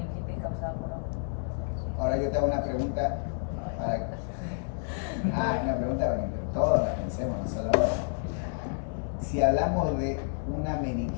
causada por hongos. Ahora yo te hago una pregunta para una pregunta para que todos la pensemos, no solo si hablamos de una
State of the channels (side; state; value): right; silent; digital silence